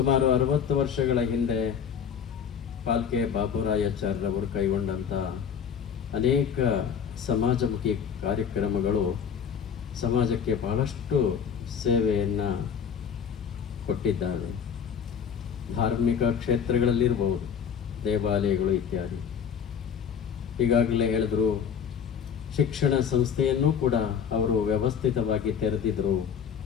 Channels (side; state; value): right; quieter; 7.5 dB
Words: 60 ವರ್ಷಗಳ ಹಿಂದೆ ಪಾಲ್ಕೆ ಬಾಬುರಾಯಾಚಾರ್ಯರವರು ಕೈಗೊಂಡಂಥ ಅನೇಕ ಸಮಾಜಮುಖಿ ಕಾರ್ಯಕ್ರಮಗಳು ಸಮಾಜಕ್ಕೆ ಬಹಳಷ್ಟು ಸೇವೆಯನ್ನು ಕೊಟ್ಟಿದ್ದಾರೆ. ಧಾರ್ಮಿಕ ಕ್ಷೇತ್ರಗಳಲ್ಲಿರ್ಬೋದು, ದೇವಾಲಯಗಳು ಇತ್ಯಾದಿ. ಈಗಾಗಲೇ ಹೇಳಿದ್ರು, ಶಿಕ್ಷಣ ಸಂಸ್ಥೆಯನ್ನು ಕೂಡ ಅವರು ವ್ಯವಸ್ಥಿತವಾಗಿ ತೆರೆದಿದ್ರು.